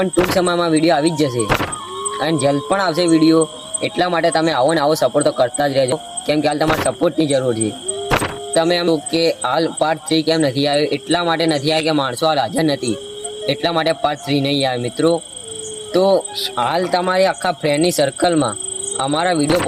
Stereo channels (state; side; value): identical; both; correlation 1.00